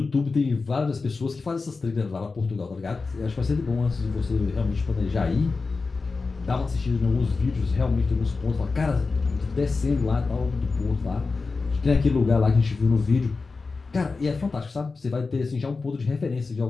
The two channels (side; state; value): right; quieter; 4.2 dB